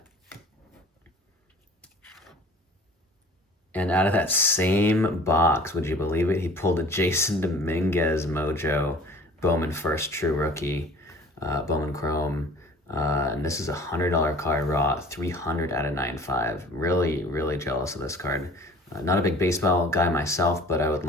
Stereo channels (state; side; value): normal; both; correlation 0.47